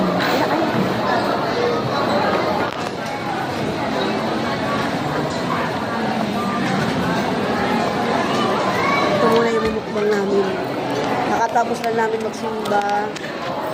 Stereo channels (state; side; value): identical; both; correlation 1.00